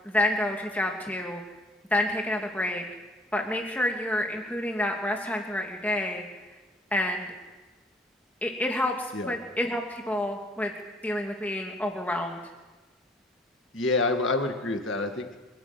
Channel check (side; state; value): both; normal; correlation 0.57